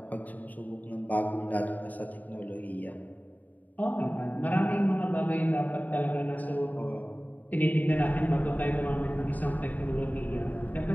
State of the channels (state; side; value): late; right; 0.080 ms